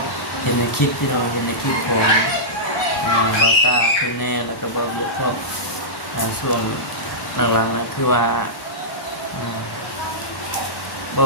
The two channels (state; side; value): normal; both; correlation -0.14